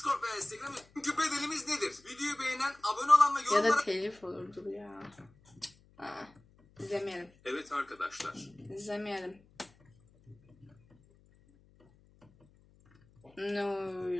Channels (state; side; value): noise; left; hum, 29 dB below the sound